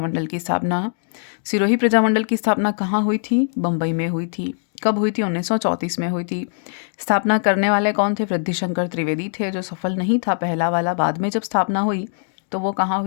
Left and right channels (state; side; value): silent; right; digital silence